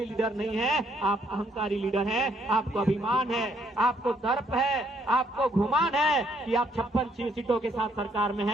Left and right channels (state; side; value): normal; both; correlation 0.69